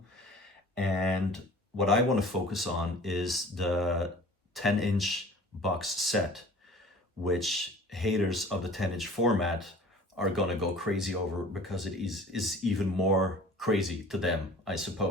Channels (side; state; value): both; normal; correlation 0.46